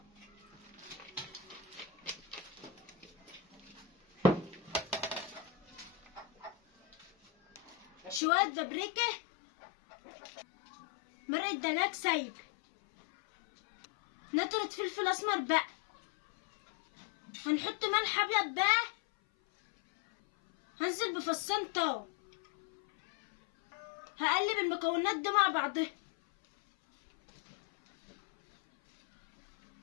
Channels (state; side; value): drops out; right; at 8.2 s